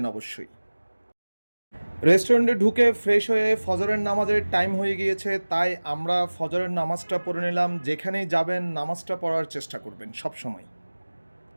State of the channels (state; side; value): inverted; both; correlation -1.00